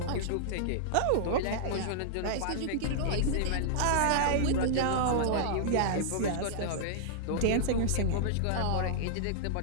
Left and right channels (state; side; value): different; both; correlation -0.01